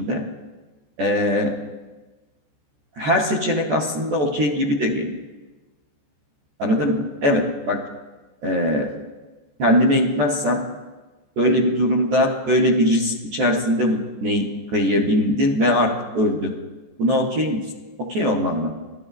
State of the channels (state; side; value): late; left; 14 ms